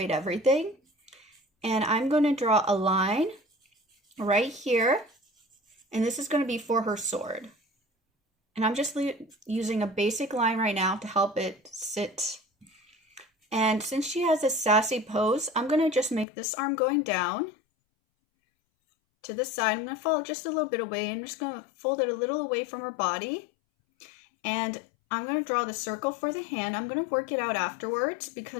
everything. And I'm going to draw a line right here, and this is going to be for her sword. And I'm just using a basic line right now to help it sit. And since she has a sassy pose, I'm going to just make this arm going down to the side. I'm going to follow just a little bit away. I'm just going to fold it a little away from her body. And I'm going to draw the circle for the hand. I'm going to work it out afterwards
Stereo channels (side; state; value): right; drops out; at 16.2 s